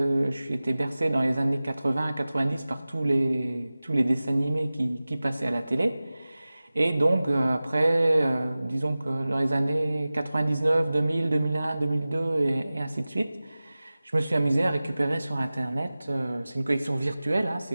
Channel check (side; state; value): both; inverted; correlation -0.97